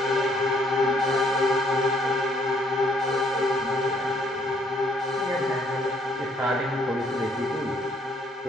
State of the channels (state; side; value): normal; both; correlation 0.66